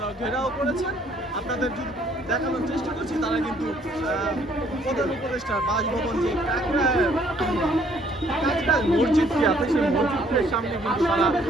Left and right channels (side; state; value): both; normal; correlation 0.63